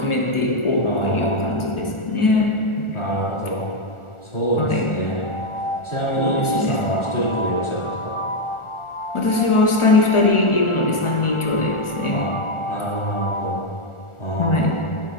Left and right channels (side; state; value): right; late; 1.4 ms